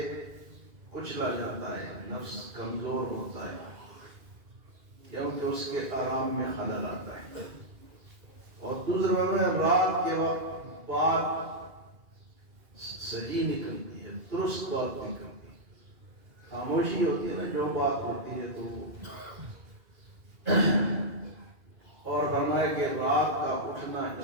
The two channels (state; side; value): late; left; 2.4 ms